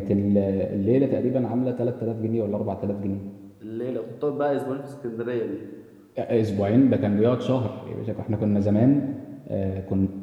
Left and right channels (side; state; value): both; identical; correlation 1.00